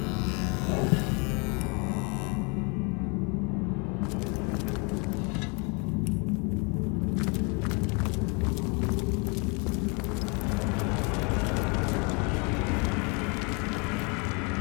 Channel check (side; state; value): right; quieter; 32.9 dB